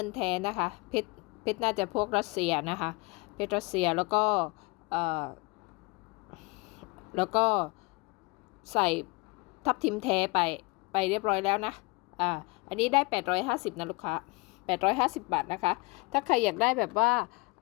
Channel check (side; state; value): right; quieter; 27.2 dB